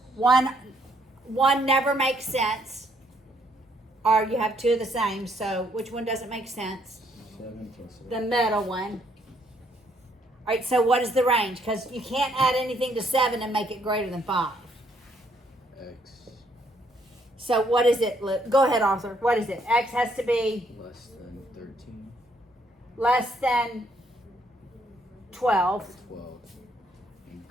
One never makes sense. Or you have 2 of the same. So which one doesn't make sense? 7 plus 8. The middle one. All right, so what is the range? Because you can't add anything to 7 and make it greater than 5. X So what is it? Go ahead, Arthur. What is it? X has to be less than 13. less than 12 12 and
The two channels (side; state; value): both; normal; correlation 0.69